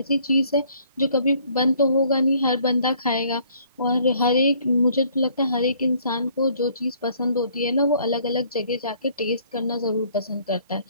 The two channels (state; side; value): inverted; both; correlation -0.61